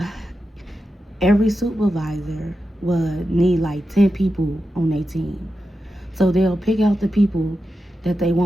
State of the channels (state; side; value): normal; both; correlation 0.90